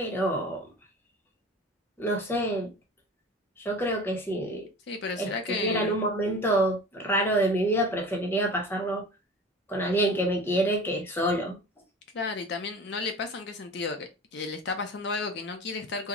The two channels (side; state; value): both; normal; correlation 0.37